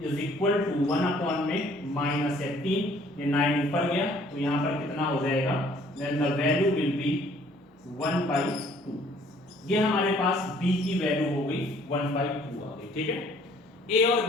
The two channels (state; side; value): normal; both; correlation 0.59